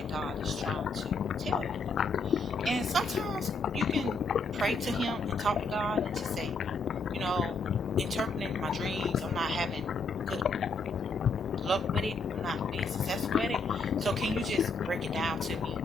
God is trying to tell you. And sometimes you can pray to him and talk to God and just say, interpreting my dreams. I'm not having good luck with it. I'm not being successful with it. So can you just break it down to me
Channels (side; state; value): right; quieter; 3.5 dB